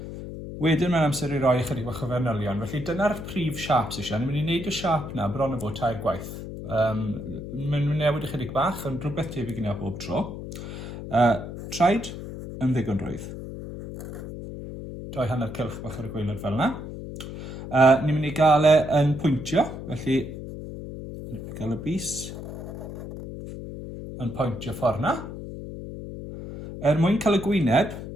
Wedyn mae'n amser i roi chydig bach o fanylion, felly dyna'r prif siaps eisiau. Ni'n mynd i wneud y siap yna bron o fod tair gwaith. Mae'n newid ychydig bach, ond rhywbeth tebyg yna bob tro. Traed yn ddigon rwydd. Doi hanner cylch bach ar y gwaelod fel yna. Ni'n mynd i gael yn pwyntio, felly ni'n mynd i gael y bus yn pwyntio ffordd yna. Mwyn cael y gwyneb,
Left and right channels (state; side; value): noise; left; hum, 9 dB below the sound